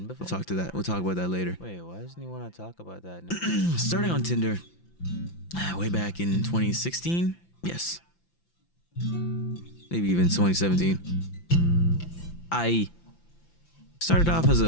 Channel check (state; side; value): late; right; 5.9 ms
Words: before? We'll talk about that later. Wait, why doesn't he want to talk about that? Starting on Tinder way back in 2016, yes, maybe even 2017. I started off as